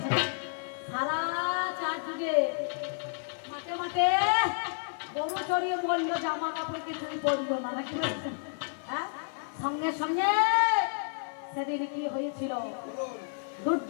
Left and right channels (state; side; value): silent; right; 57 dB below the other